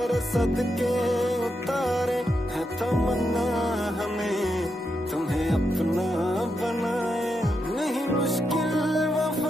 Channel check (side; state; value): both; normal; correlation 0.84